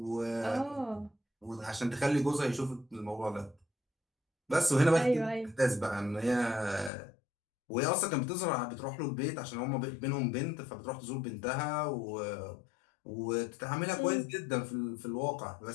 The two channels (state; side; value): drops out; right; at 6.9 s